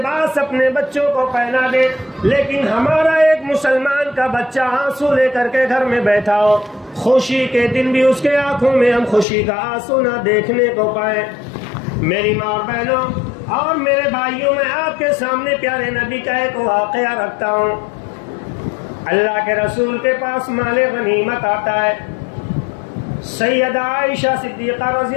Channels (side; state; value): right; drops out; at 9.2 s